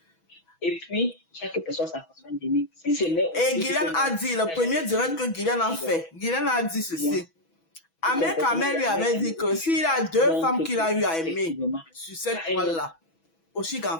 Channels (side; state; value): right; late; 6.1 ms